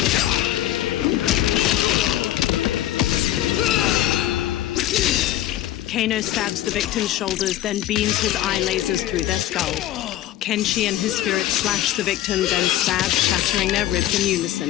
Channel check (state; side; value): quieter; right; 13.6 dB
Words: Kano stabs the victim's shoulders, then beams his eye lasers through their skull. Kenshi and his spirit slash the victim, then stab, shattering their ribs in